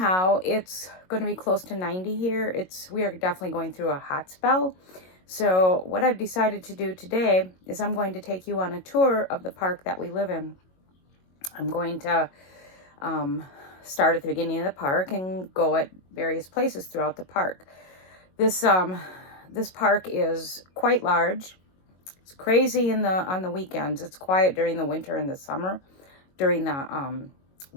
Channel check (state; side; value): late; right; 22 ms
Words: it's going to be close to 90 here. We are definitely going through a hot spell. So what I've decided to do today is I'm going to take you on a tour of the park that we live in. I'm going to start at the beginning of the park and go at various places throughout the park. This park is quite large. It's crazy on the weekends. It's quiet during the winter and the summer. During the